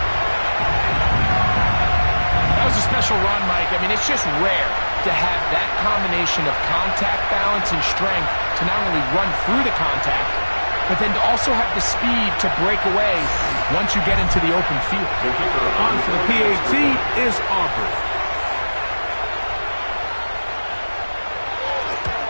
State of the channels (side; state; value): both; inverted; correlation -1.00